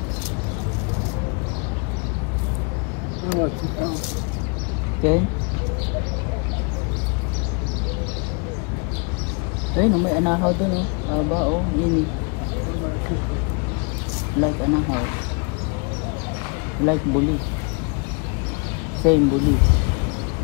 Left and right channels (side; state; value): right; quieter; 34.1 dB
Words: Ken? Ayun, may anahaw doon, oh. Haba, oh. Yun, like anahaw. Like buli. Same buli.